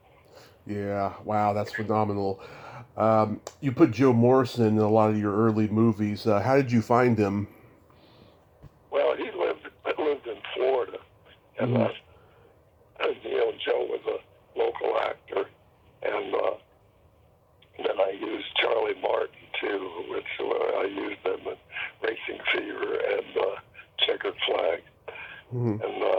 Yeah. Wow, that's phenomenal. You put Joe Morrison in a lot of your early movies. How did you find him? Well, he lived in Florida, and you know, Joe was a local actor, and then I used Charlie Martin too, which I used them in Racing Fever and Checkered Flag, and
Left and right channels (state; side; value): identical; both; correlation 1.00